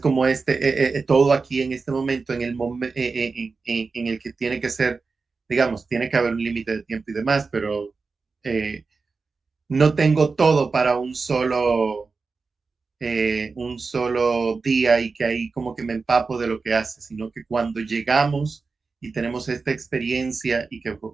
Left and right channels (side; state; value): left; quieter; 4.4 dB